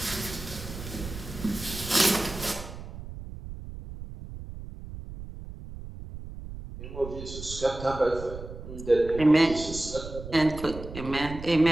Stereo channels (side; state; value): right; noise; rumble, 11 dB below the sound